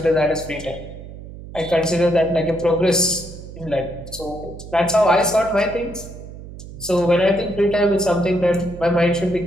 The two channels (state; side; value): noise; right; hum, 14 dB below the sound